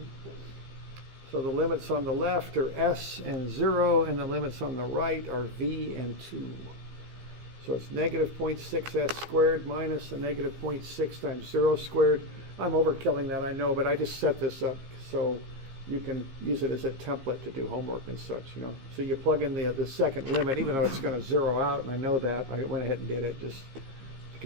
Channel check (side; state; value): left; late; 15 ms